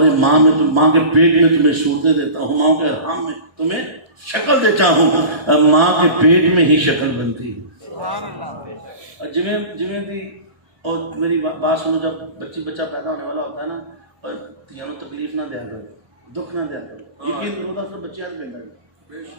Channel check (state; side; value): late; left; 1.2 ms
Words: ماں میں ماں کے پیٹ میں تمہیں صورتیں دیتا ہوں ماں کے حرام میں تمہیں شکل دیتا ہوں. ماں کے پیٹ میں ہی شکل بنتی ہے. جویں دی اور میری بات سنو جب بچہ پیدا ہونے والا ہوتا ہے نا اور تینوں تکلیف نہ دیا کرو دکھ نہ دیا کرو. یقین ہوتا تو بچے آج بیٹھا